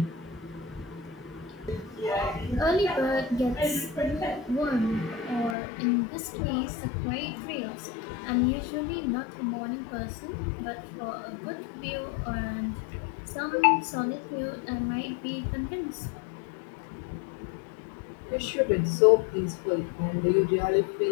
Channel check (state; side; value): drops out; right; at 5.6 s